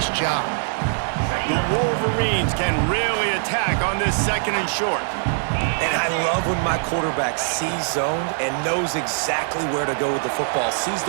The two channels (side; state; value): left; silent; digital silence